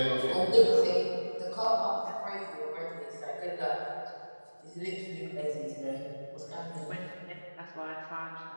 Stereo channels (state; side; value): inverted; both; correlation -1.00